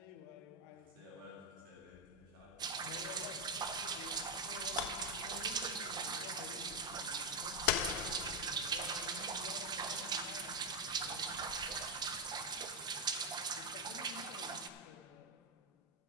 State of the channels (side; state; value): both; normal; correlation 0.04